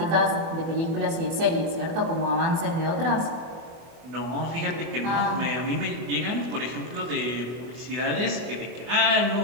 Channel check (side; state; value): left; late; 24 ms